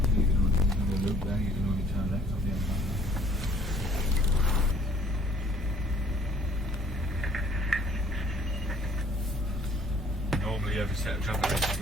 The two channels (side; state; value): both; normal; correlation 0.58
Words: can only loop there, you can only turn left on the other side. Normally every set of traffic has